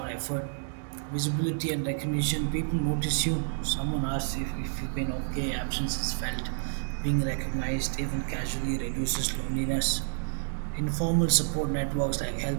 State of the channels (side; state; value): left; silent; 58 dB below the other